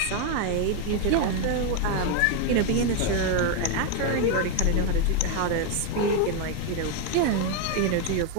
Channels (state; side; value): different; both; correlation 0.01